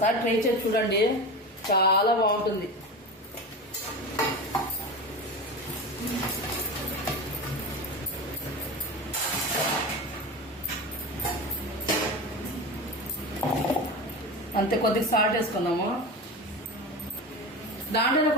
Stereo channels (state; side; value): normal; both; correlation 0.26